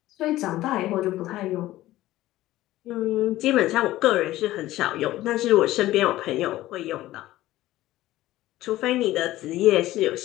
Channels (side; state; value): right; quieter; 15.8 dB